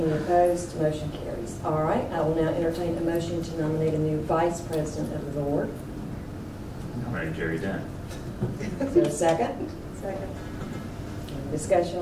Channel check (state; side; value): identical; both; correlation 1.00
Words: opposed? Motion carries. All right, I will now entertain a motion to nominate a new vice president of the board. Nominate Jerry Dunn. Is there a second? Second. Any